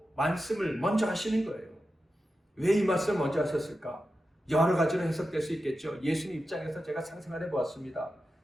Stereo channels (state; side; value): normal; both; correlation 0.91